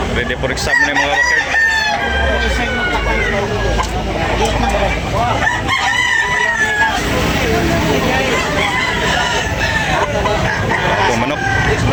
Ready for exam na yung mga bakard. Ako manok.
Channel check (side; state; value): both; identical; correlation 1.00